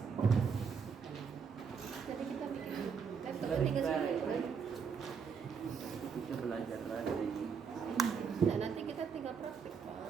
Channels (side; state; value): left; quieter; 6.3 dB